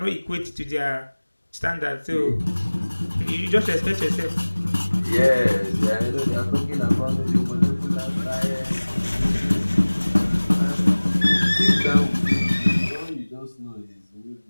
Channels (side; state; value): both; inverted; correlation -1.00